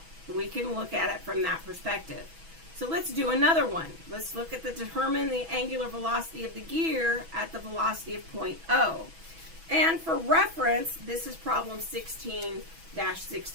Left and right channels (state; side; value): late; left; 6.1 ms